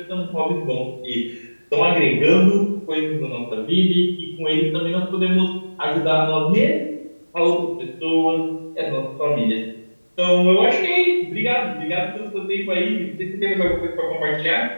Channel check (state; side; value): inverted; both; correlation -1.00